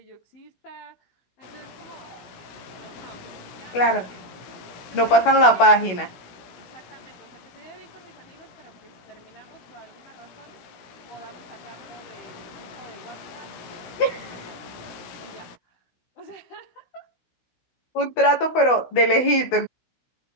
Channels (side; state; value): right; late; 16 ms